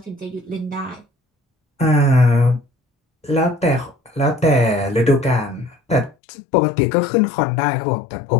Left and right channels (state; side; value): drops out; right; at 6.2 s